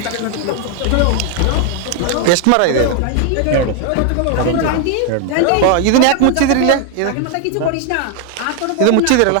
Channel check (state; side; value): different; both; correlation 0.00